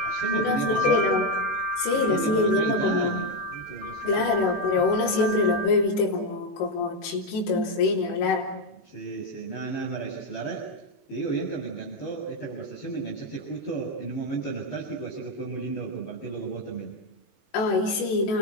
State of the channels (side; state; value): right; late; 18 ms